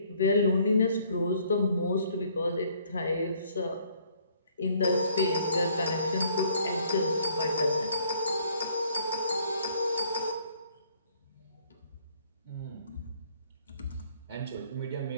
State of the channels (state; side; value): inverted; both; correlation -0.62